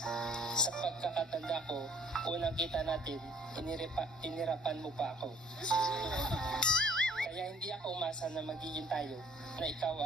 Sa pagkakatanda ko, unang kita natin, inirapan mo pa ako. Kaya hindi ako umasa na magiging tayo, na ikaw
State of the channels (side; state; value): both; normal; correlation 0.59